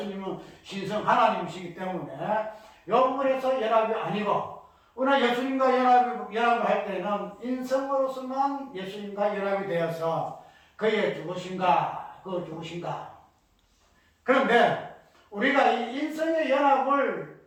신성 하나님이시기 때문에 이 부분에서 연합이 아니고, 우리가 예수님과 연합을 할 때는 인성으로서만 예수님과 연합이 되어서 그의 죽으신가. 그런데 우리가 이 인성의 연합을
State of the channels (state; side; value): identical; both; correlation 1.00